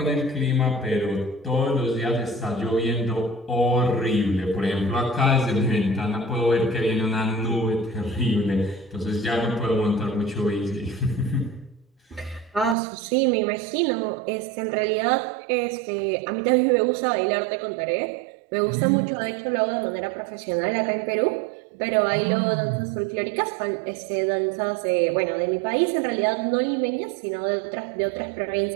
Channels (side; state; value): left; drops out; at 12.8 s